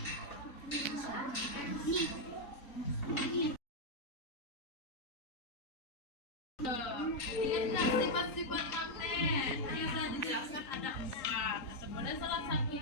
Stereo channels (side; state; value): right; late; 3.9 ms